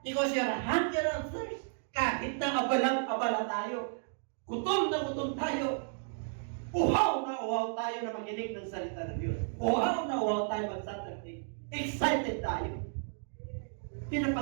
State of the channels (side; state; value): left; silent; digital silence